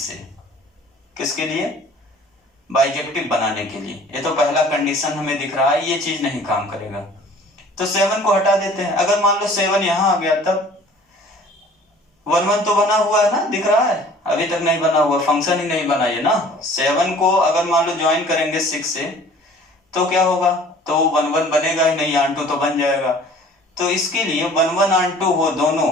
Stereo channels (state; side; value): normal; both; correlation 0.50